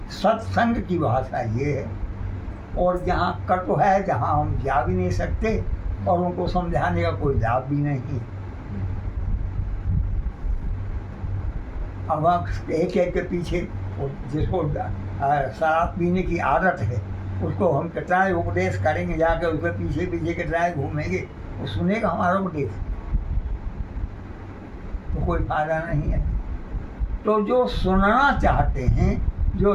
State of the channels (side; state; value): both; identical; correlation 1.00